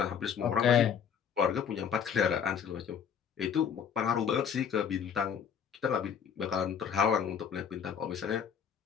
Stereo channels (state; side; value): quieter; right; 7.6 dB